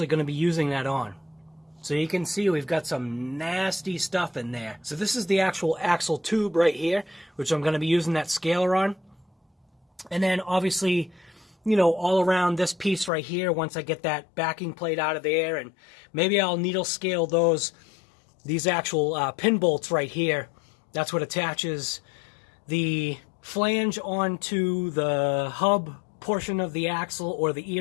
going to be using that on. So you can see we've got some nasty stuff in there. So this is the actual axle tube right here, which I'm going to be using that scaler on. And then obviously, you know, all around this piece right here, once I get that backing plate out of there, and maybe I'll needle scale these actual pin bolts right here. That's what attaches the flange onto the hub portion of the axle, or the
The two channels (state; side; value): drops out; right; at 13.1 s